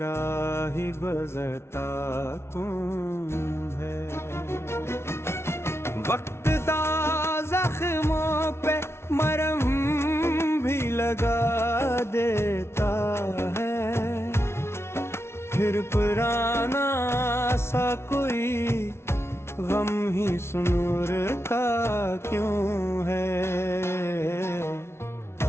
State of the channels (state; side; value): late; right; 0.12 ms